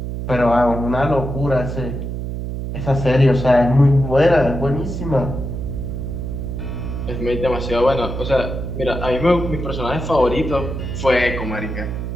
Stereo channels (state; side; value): noise; right; hum, 5 dB below the sound